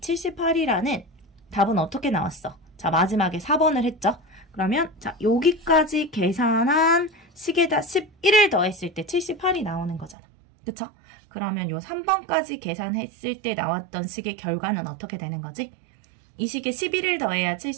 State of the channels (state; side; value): drops out; left; at 10.2 s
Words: 답은 어떻게 나왔어? 자, 마지막에 4번을 했죠. 그러면 자, 여기까지 계산한 식에다 11을 더했을 때 78이 나오는 거잖아. 그쵸? 그러면 요 3번까지 계산했을 때 나왔던 식의 결과는 어떻게 되는 거지? 이 식에 11을 더해야